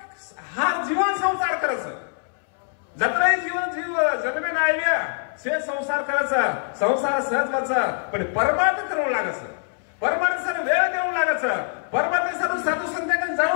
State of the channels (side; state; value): right; silent; 62 dB below the other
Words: हा जीवन संसार करायचं जत्राही जीवन जीव जन्मे नाही से संसार करायचा संसार सहज व्हायचा पण परमार्थ करून लागायचं परमार्थासाठी वेळ देऊन लागायचं परमार्थासाठी साधू संतांकडे